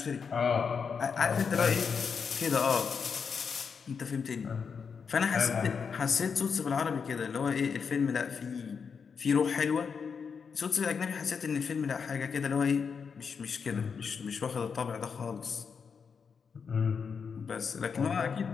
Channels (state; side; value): quieter; right; 6.0 dB